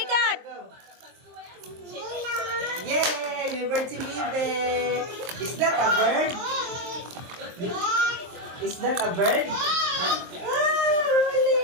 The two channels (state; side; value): late; left; 23 ms